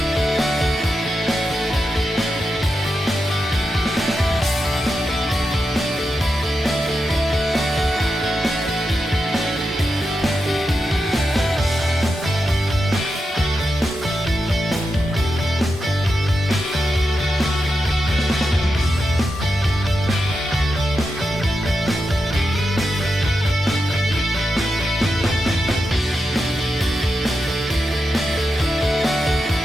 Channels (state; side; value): normal; both; correlation 0.88